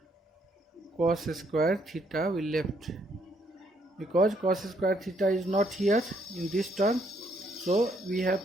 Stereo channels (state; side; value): normal; both; correlation 0.71